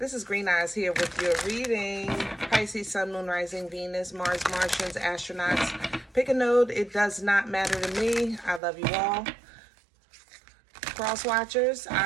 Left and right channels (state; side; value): drops out; left; at 8.6 s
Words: is Green Eyes here with your reading. Pisces, Sun, Moon, Rising, Venus, Mars, Martians, astronauts. Pick a node. It does not matter to me. I love you all. Cross watchers,